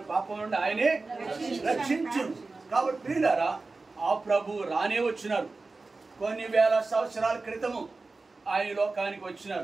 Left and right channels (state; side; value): quieter; left; 3.7 dB